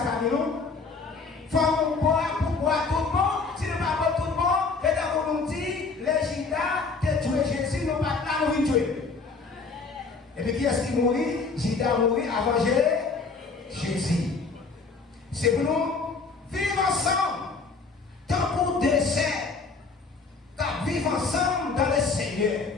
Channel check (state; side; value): quieter; right; 4.4 dB